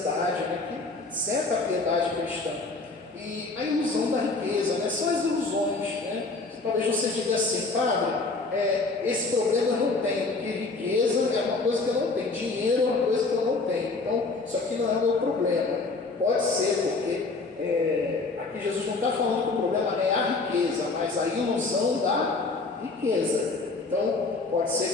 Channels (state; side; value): quieter; right; 3.7 dB